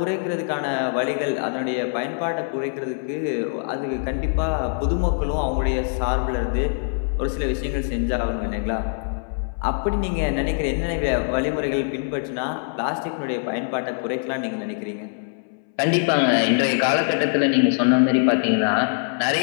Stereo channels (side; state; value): right; silent; 63 dB below the other